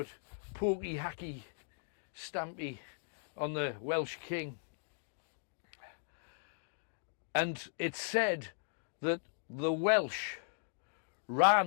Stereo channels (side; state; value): right; silent; digital silence